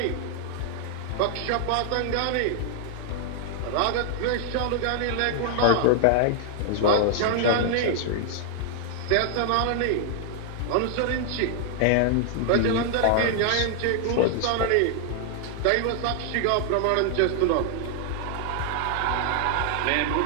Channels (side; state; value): both; different; correlation 0.00